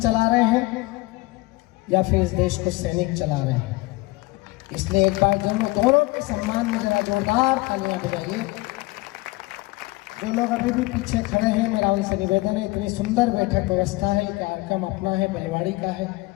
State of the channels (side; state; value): right; quieter; 22.3 dB